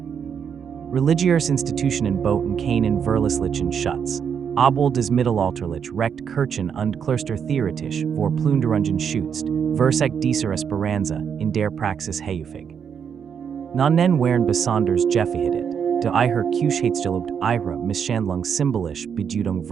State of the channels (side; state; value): left; quieter; 7.4 dB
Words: Religiöse Institutionen boten keinen verlässlichen Schutz, obwohl des mittelalterlich Recht Kirchen und Klöster theoretisch vor Plünderungen schützt, versagt dieser Esperanza in der Praxis häufig. Nannen waren besonders gefährdet, da ihre Kühnheitsgelobt ihre Misshandlung symbolisch Bedeutung